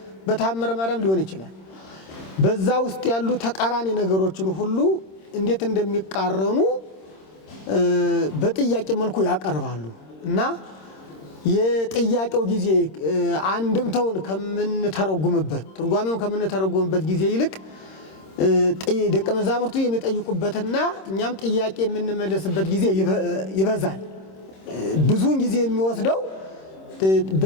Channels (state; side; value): late; right; 26 ms